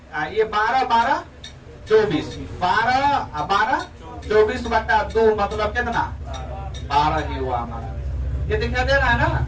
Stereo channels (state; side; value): identical; both; correlation 1.00